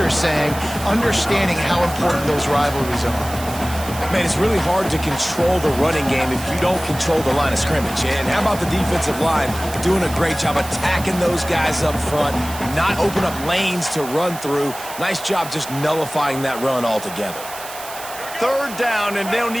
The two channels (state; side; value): noise; right; hiss, 13 dB below the sound